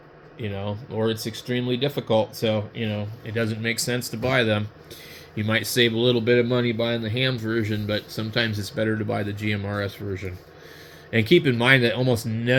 you know, or it's extremely difficult. So, you know, it doesn't make sense to buy them. You might save a little bit of money buying the ham version, but sometimes it's better to buy the GMRS version. And keep in mind that almost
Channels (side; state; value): both; identical; correlation 1.00